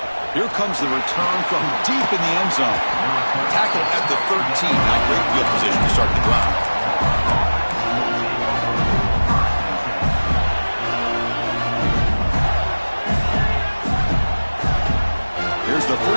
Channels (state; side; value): inverted; both; correlation -1.00